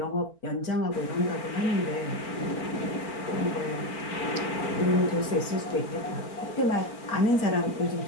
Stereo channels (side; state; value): right; late; 4.4 ms